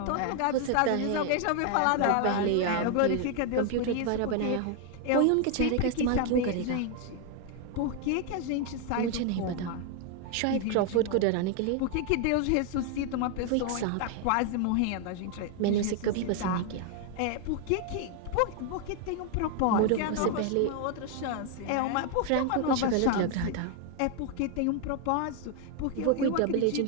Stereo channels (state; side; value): different; both; correlation 0.01